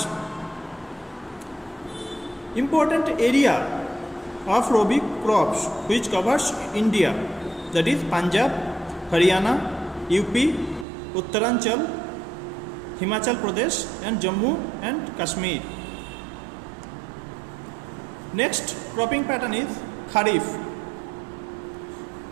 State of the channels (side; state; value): left; drops out; at 10.9 s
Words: Important area of Rabi crops which covers India, that is Punjab, Haryana, UP, Uttaranchal, Himachal Pradesh and Jammu and Kashmir. Next cropping pattern is Kharif,